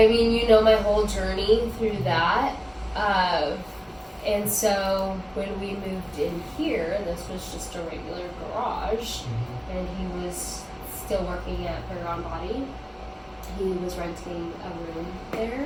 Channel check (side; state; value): both; identical; correlation 1.00